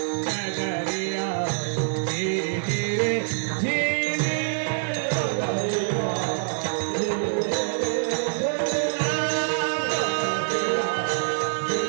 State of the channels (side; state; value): left; silent; 62 dB below the other